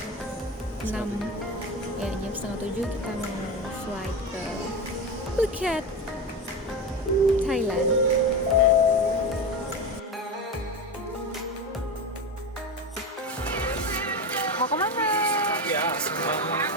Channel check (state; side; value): normal; both; correlation 0.21